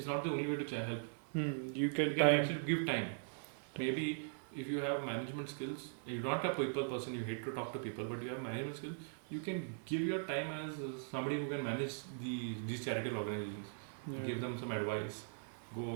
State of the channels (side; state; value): left; silent; digital silence